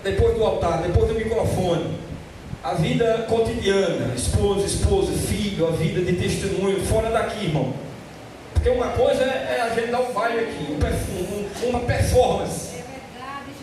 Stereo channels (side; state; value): both; identical; correlation 1.00